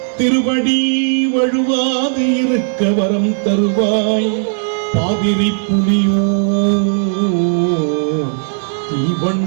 திருவடி வழுவாது இருக்க வரம் தருவாய் பாதிரி புலியோ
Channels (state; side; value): silent; left; 63 dB below the other